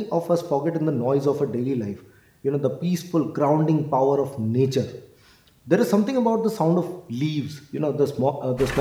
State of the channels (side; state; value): both; identical; correlation 1.00